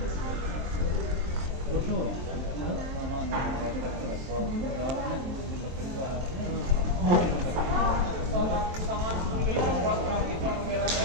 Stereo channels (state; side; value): late; left; 23 ms